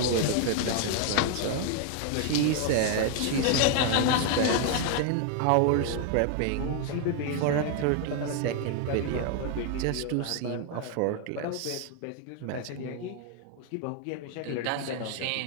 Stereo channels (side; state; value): both; different; correlation 0.00